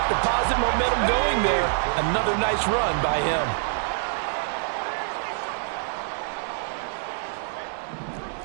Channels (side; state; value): left; silent; digital silence